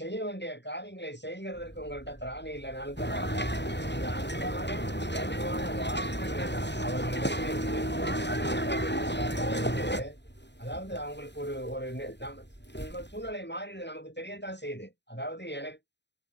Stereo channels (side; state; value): right; late; 0.51 ms